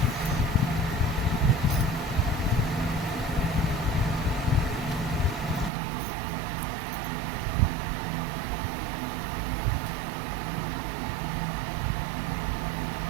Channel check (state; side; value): drops out; left; at 5.7 s